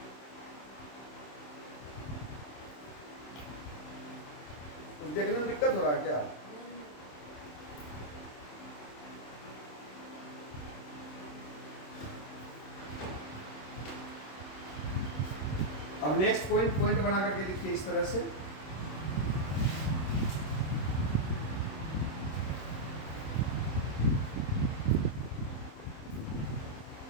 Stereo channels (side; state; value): right; late; 26 ms